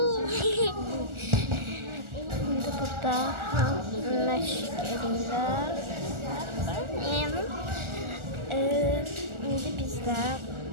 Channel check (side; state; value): left; late; 1.4 ms